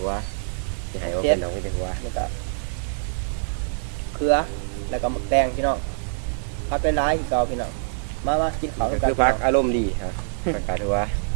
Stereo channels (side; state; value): left; silent; 62 dB below the other